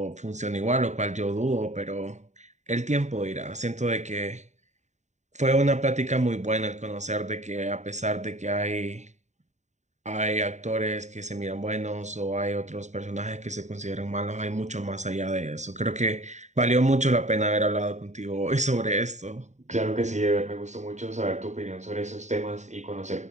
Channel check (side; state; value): left; late; 0.34 ms